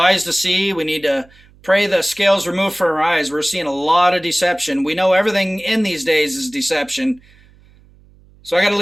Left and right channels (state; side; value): noise; right; hum, 28 dB below the sound